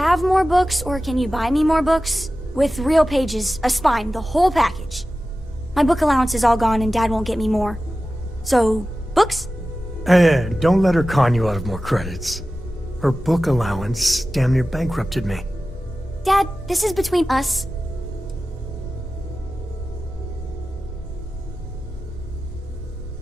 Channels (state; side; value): normal; both; correlation 0.95